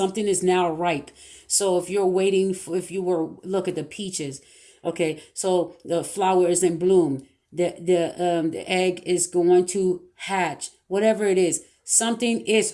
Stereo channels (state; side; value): identical; both; correlation 1.00